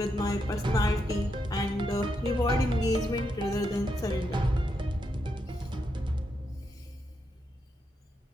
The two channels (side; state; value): both; normal; correlation 0.82